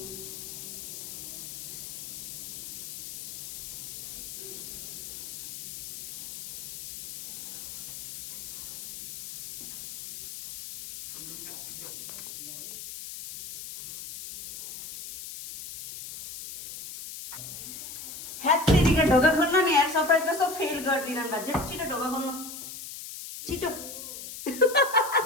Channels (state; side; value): noise; left; hiss, 11 dB below the sound